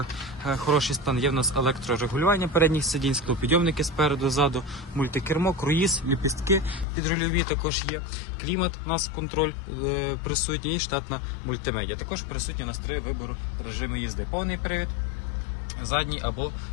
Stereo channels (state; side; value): drops out; right; at 6.9 s